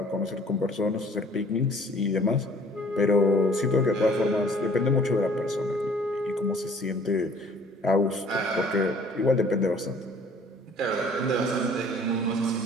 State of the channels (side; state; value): both; normal; correlation 0.55